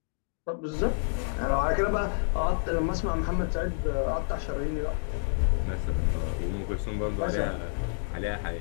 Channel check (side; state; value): right; silent; digital silence